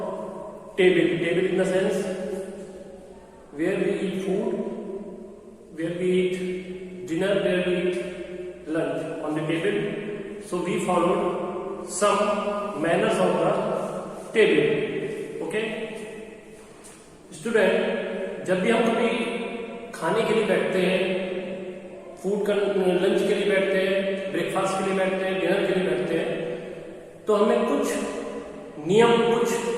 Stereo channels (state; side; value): identical; both; correlation 1.00